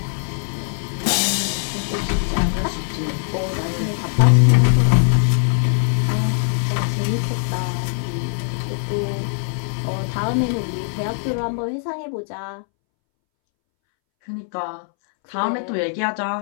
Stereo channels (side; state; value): right; silent; 64 dB below the other